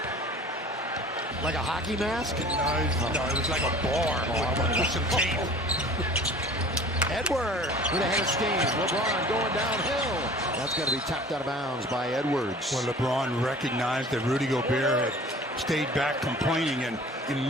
Like a hockey mask? No, it was like a bar with some tape. Edwards with a head of steam. LeBron going downhill. That's going to be tapped out of bounds by Edwards. Well, LeBron recognized that Rudy Gobert had stayed back complaining and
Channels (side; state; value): both; normal; correlation 0.45